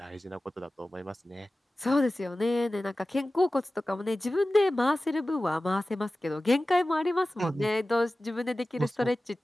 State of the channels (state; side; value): normal; both; correlation 0.96